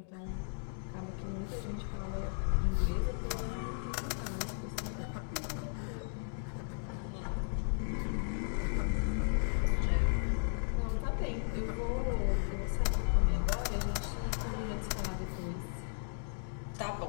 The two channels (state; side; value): silent; right; digital silence